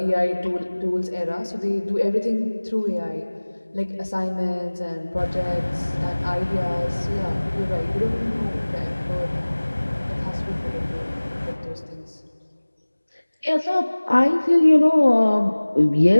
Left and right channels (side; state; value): both; inverted; correlation -1.00